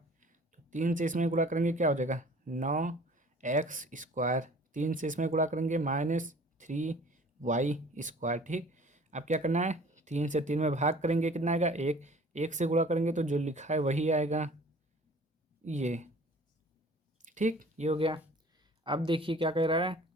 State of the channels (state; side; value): normal; both; correlation 0.49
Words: 3 से इसमें गुणा करेंगे क्या हो जाएगा 9x², 3 से इसमें गुणा करेंगे -3y²। ठीक, अब क्या करना है 3 से 3 में भाग करेंगे कितना आएगा 1, 1 से गुणा करेंगे तो जो लिखा है वही आएगा ये। ठीक, ये हो गया। अब देखिए क्या कह रहा है